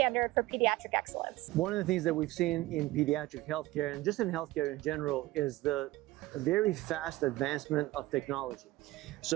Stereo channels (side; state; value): left; quieter; 18.2 dB